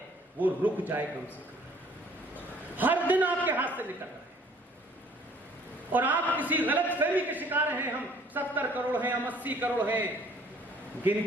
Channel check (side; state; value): both; normal; correlation 0.57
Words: वो रुक जाए कम से कम। हर दिन आपके हाथ से निकल रहा है और आप किसी गलतफहमी के शिकार हैं। हम 70 करोड़ हैं, हम 80 करोड़ हैं।